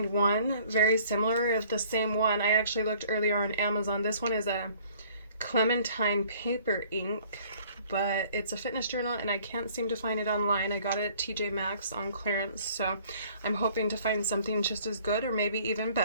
one very similar, if the same one. I actually looked earlier on Amazon. This one is a Clementine paper ink, but it's a fitness journal and I can't seem to find it online. I got it at TJ Maxx on clearance, so I'm hoping to find something just as good or maybe even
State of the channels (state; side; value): inverted; both; correlation -0.56